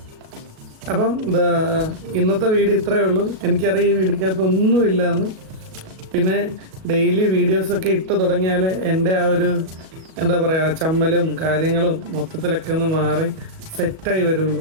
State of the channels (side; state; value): left; late; 37 ms